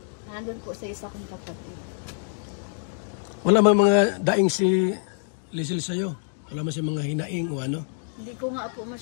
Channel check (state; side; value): silent; right; digital silence